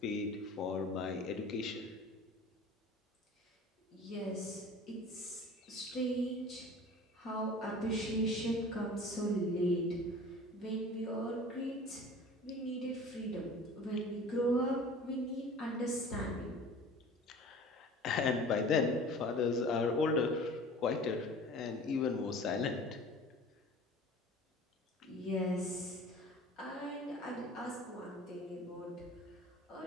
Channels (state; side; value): normal; both; correlation 0.43